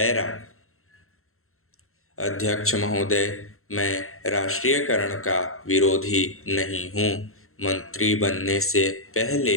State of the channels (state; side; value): late; right; 0.62 ms